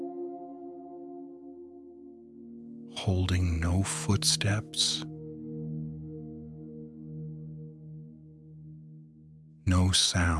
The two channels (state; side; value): identical; both; correlation 1.00